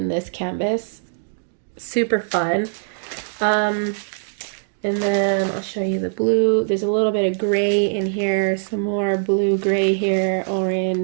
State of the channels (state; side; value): silent; left; digital silence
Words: this canvas. Super fun. And then I'll show you the blue. There's a little bit of gray in here, some more blue, gray here,